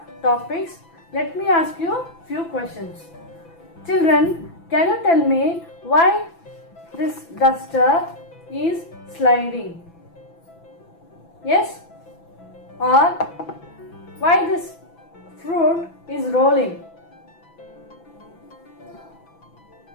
topics, let me ask you few questions. Children, can you tell me why this duster is sliding? Yes? Or why this fruit is rolling?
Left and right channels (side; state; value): right; late; 6.0 ms